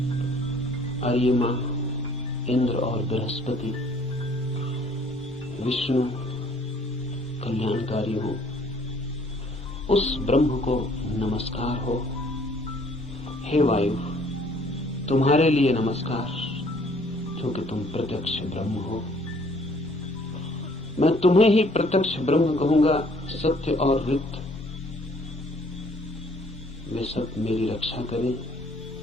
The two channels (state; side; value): normal; both; correlation 0.59